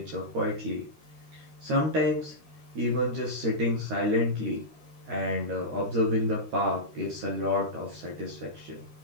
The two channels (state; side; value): late; left; 13 ms